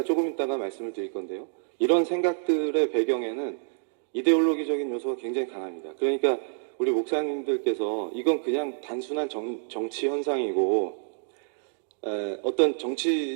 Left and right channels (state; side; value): silent; left; digital silence